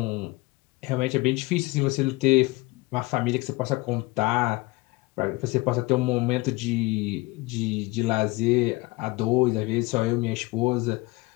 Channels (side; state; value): right; quieter; 22.9 dB